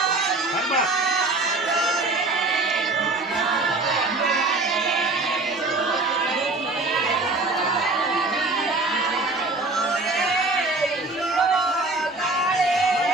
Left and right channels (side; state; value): left; quieter; 3.2 dB